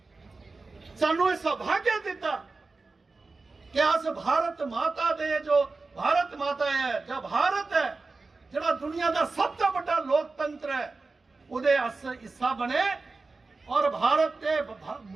सानू यह सौभाग्य दिता कि अस भारत माता दे, जो भारत माता है, जो भारत है, जड़ा दुनिया का सबसे बड़ा लोकतंत्र है, उदे अस हिस्सा बने और भारत के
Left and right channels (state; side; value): quieter; left; 3.8 dB